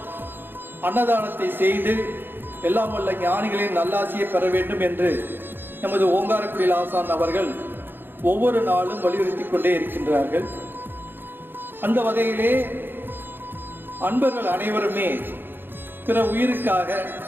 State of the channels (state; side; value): late; left; 0.099 ms